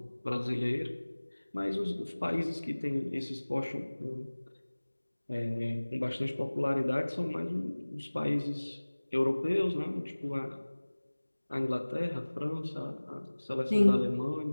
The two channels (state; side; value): inverted; both; correlation -1.00